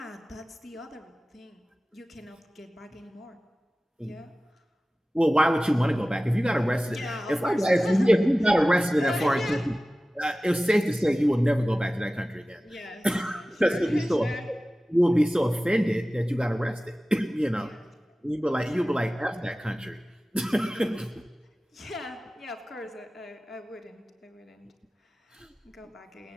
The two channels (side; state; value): both; normal; correlation 0.97